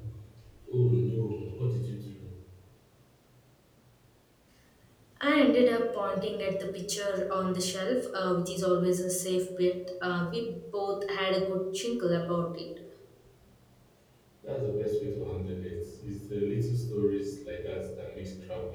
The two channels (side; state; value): both; identical; correlation 1.00